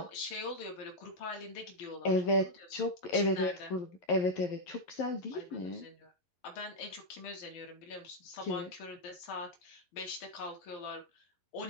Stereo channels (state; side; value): late; right; 12 ms